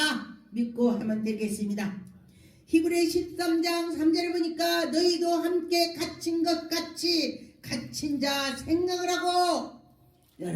믿고 하면 되겠습니다. 히브리 13장 3절에 보니까 너희도 함께 갇힌 것 같이 갇힌 자 생각을 하고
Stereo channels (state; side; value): identical; both; correlation 1.00